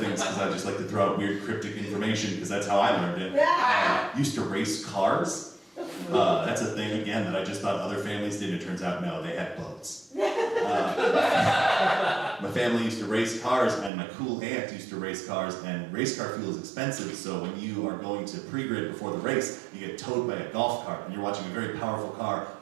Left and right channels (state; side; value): drops out; left; at 13.9 s